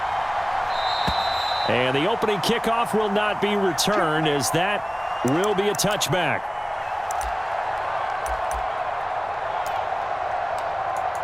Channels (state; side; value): identical; both; correlation 1.00